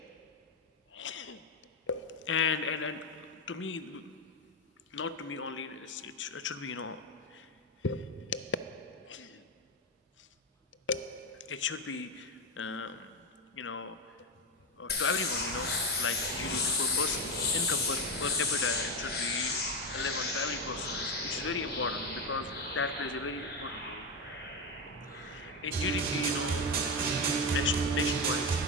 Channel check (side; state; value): both; normal; correlation 0.11